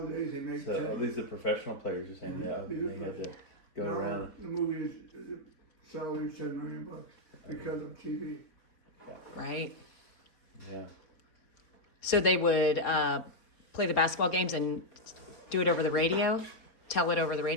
they make So at least the professional players are saying that they had to go now, around. The movies, the salary is $10 million because of TV. Right. Yeah. So they would play the basketball games and do it over the radio? Tell it over the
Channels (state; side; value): late; right; 4.4 ms